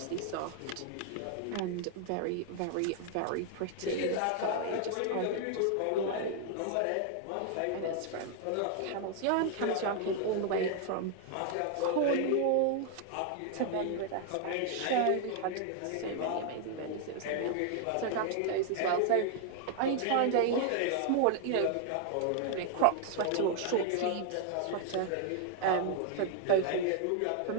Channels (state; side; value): different; both; correlation 0.00